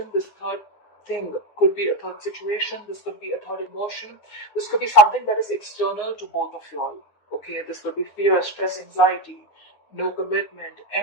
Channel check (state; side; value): late; right; 9.7 ms